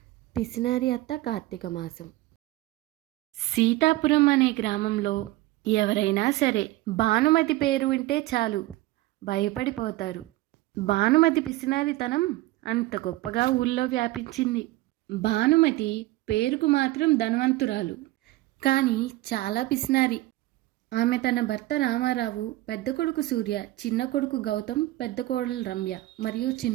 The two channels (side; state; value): left; quieter; 17.8 dB